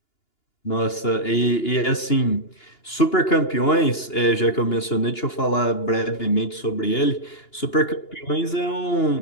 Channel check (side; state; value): right; late; 2.9 ms